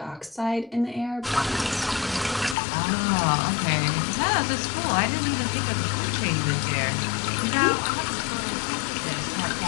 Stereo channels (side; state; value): right; drops out; at 2.6 s